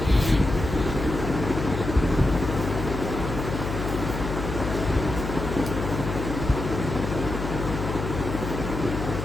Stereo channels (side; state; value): left; noise; hum, 5 dB below the sound